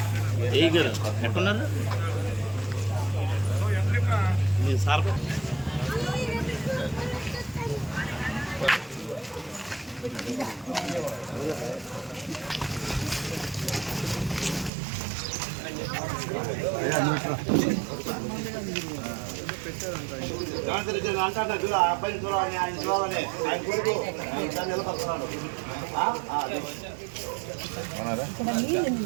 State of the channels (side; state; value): left; drops out; at 14.7 s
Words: ఎట్టున్నారు సార్? అబ్బాయిని చూడాలని, ఆయన చూడాలని ఆయన కొడుకు నిలబడుతున్నాడు.